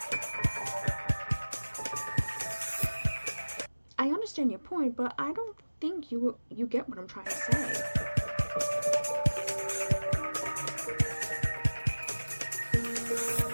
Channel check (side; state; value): both; inverted; correlation -1.00